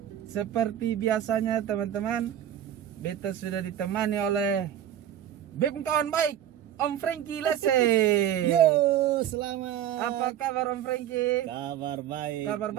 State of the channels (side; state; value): left; quieter; 10.9 dB